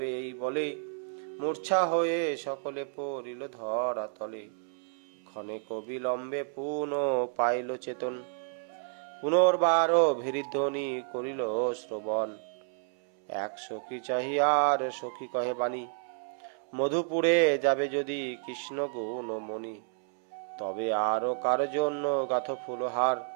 এই বলে, মূর্ছা হয়ে সকলে পড়িল ধরা তলে। ক্ষণেক বিলম্বে পুনঃ পাইল চেতন, পুনর্বার ভেরিধ্বনি করিল শ্রবণ। এক সখী চাহিয়ার সখী কহে বাণী, মধুপুরে যাবে যদি কৃষ্ণ গুণমণি। তবে আরো কার জন্য গাথ ফুলহার,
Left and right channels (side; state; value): left; silent; 57 dB below the other